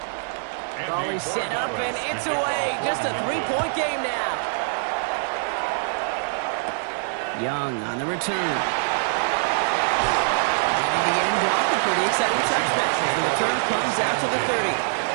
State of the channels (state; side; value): silent; left; 62 dB below the other